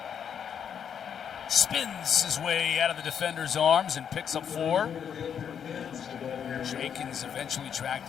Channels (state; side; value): quieter; right; 8.0 dB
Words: spins his way out of the defender's arms and picks up 4. Jenkins eventually tracked